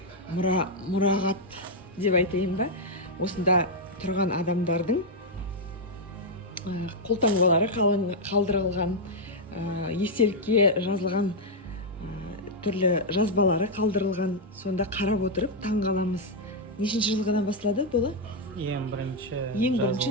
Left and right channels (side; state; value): both; normal; correlation -0.02